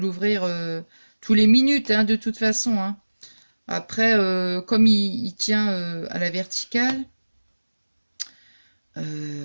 tous les minutes, hein, de toute façon, hein. Après, comme il tient à la verticale,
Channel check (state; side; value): inverted; both; correlation -1.00